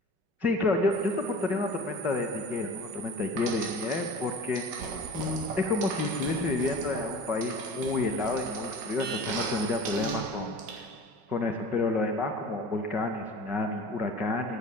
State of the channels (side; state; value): left; late; 5.4 ms